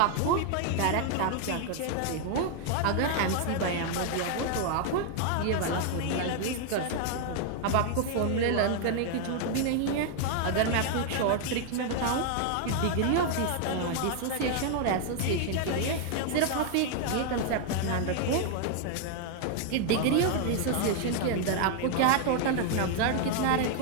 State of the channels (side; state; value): both; different; correlation 0.00